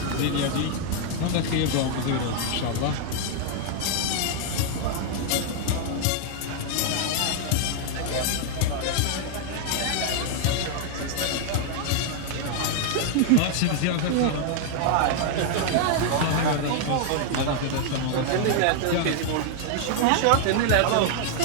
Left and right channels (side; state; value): both; different; correlation 0.00